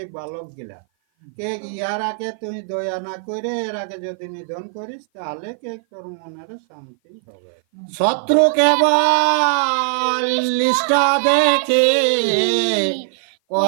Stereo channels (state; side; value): silent; left; 57 dB below the other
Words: বালক গিলা কে ইয়ার আগে তুই দয়া না করে এর আগে যদি নিধন করিস, তাহলে কে তোর মনের শান্তি হবে। শত্রু কেবল লিষ্ট দেখে